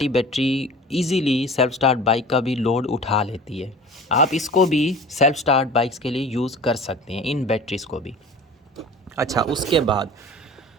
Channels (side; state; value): both; normal; correlation 0.41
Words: battery easily self start bike का भी लोड उठा लेती है। आप इसको भी सेल्फ स्टार्ट बाइक्स के लिए यूज़ कर सकते हैं, इन बैटरीज़ को भी। अच्छा, उसके बाद